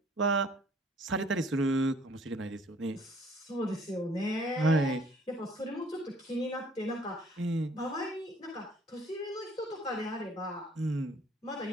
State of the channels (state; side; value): normal; both; correlation 0.57